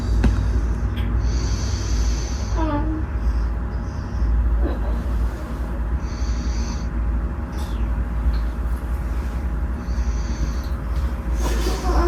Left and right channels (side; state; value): both; identical; correlation 1.00